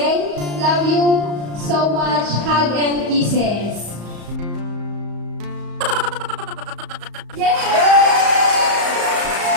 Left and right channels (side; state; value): left; late; 34 ms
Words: Love you so much. Hug and kisses.